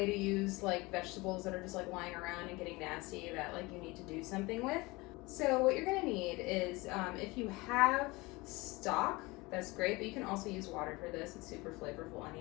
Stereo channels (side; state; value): right; quieter; 23.3 dB